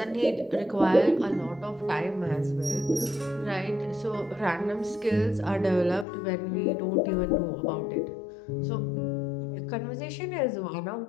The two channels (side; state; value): right; drops out; at 6.1 s